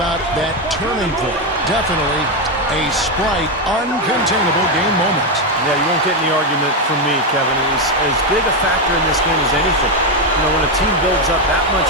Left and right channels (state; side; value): normal; both; correlation 0.07